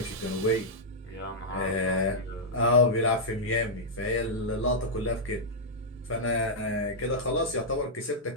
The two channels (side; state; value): both; normal; correlation -0.08